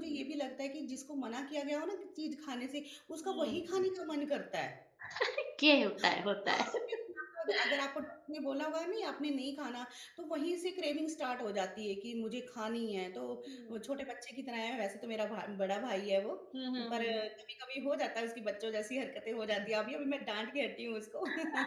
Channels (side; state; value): both; identical; correlation 1.00